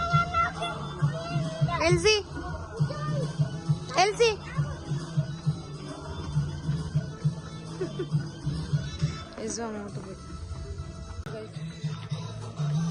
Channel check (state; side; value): identical; both; correlation 1.00